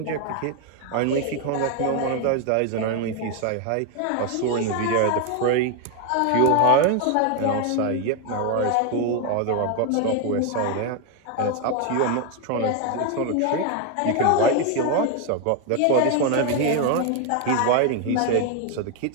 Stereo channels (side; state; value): both; different; correlation 0.01